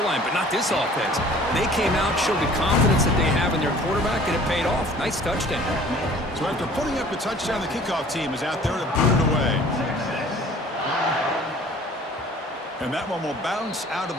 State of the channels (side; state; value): both; normal; correlation 0.50